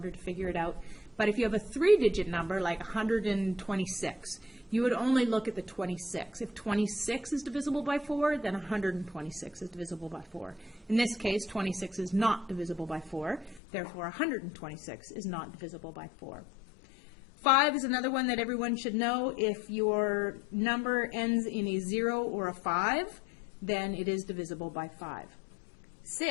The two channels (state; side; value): drops out; right; at 13.6 s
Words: to figure it out. But if you have a 3-digit number, like 126, you would only look at the 26. If 26 is divisible by 4, then 126 is divisible by 4. In this case, 26 is not divisible by 4. Therefore, 126 is not divisible by 4. 5 is another one that everyone should know. If your number ends in a 0 or a 5, then it is divisible by 5.